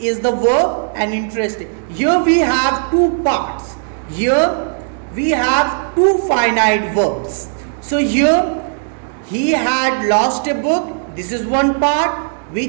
the verb and interesting. Here we have two parts. Here we have two finite verbs. So here he had lost a book. This is one part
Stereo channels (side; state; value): left; silent; 69 dB below the other